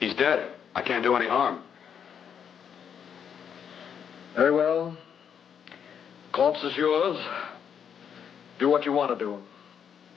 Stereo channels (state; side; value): quieter; right; 7.9 dB